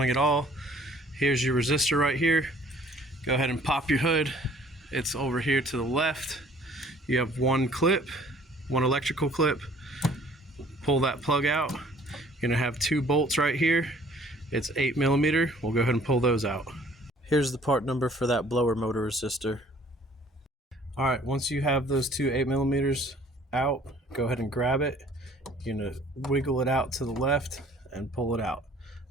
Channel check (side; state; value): both; normal; correlation 0.55